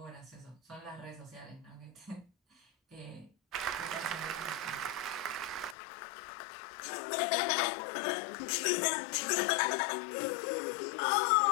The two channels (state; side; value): drops out; right; at 5.8 s